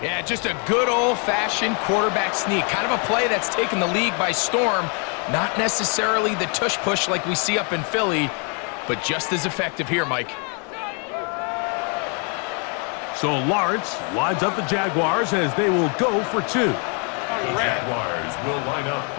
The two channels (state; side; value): quieter; right; 37.4 dB